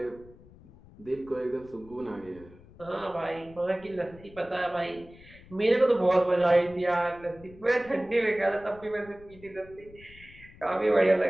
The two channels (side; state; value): left; noise; rumble, 22 dB below the sound